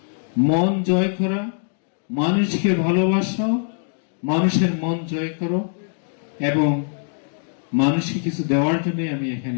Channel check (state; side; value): silent; right; 64 dB below the other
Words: মন জয় করা, মানুষকে ভালোবাসা, মানুষের মন জয় করো এবং মানুষকে কিছু দেওয়ার জন্য আমি এখানে